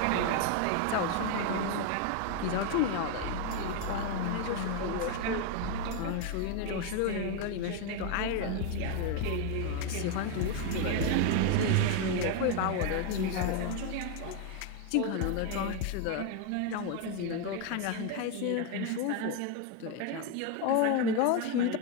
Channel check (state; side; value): different; both; correlation 0.01